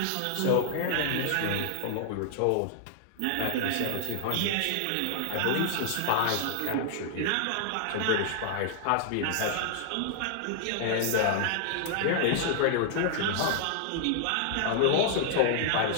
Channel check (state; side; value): different; both; correlation -0.01